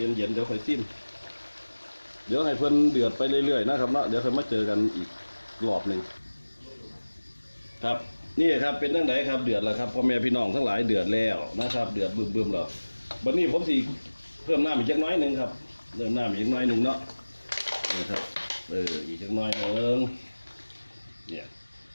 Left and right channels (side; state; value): both; inverted; correlation -1.00